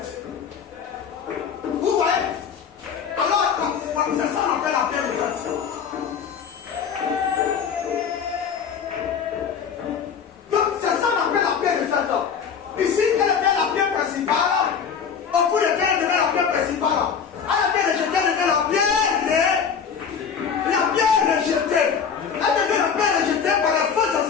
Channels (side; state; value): right; quieter; 6.9 dB